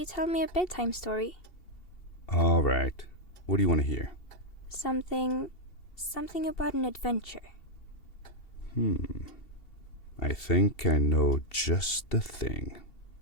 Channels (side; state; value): right; late; 2.7 ms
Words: tell me a bedtime story? All right. What do you want to hear? Something about an adventure. I think I know just the thing.